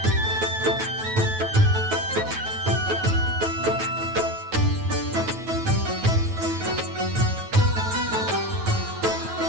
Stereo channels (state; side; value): late; left; 9.3 ms